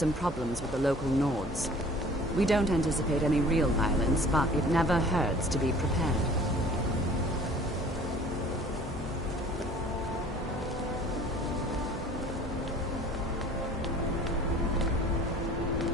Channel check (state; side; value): normal; both; correlation 0.49